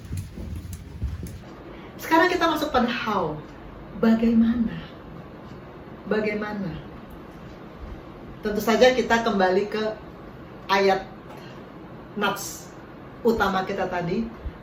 Sekarang kita masuk pada how. Bagaimana? Bagaimana? Tentu saja kita kembali ke ayat nats utama kita tadi,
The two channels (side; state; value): both; identical; correlation 1.00